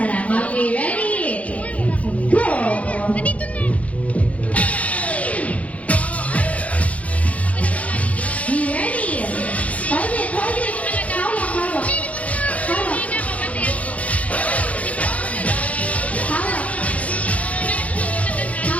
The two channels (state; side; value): late; right; 0.067 ms